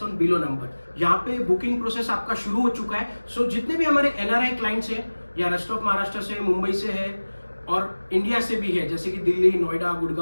on below number. यहाँ पे बुकिंग प्रोसेस आपका शुरू हो चुका है. सो जितने भी हमारे एनआरआई क्लाइंट्स हैं या रेस्ट ऑफ महाराष्ट्र से, मुंबई से है और इंडिया से भी है, जैसे कि दिल्ली, नोएडा,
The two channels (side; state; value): both; inverted; correlation -1.00